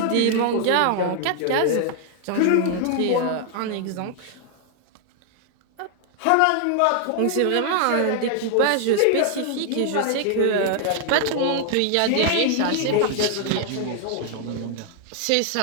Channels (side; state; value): both; different; correlation 0.00